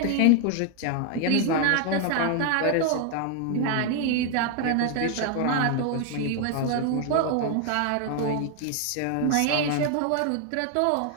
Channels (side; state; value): both; different; correlation 0.01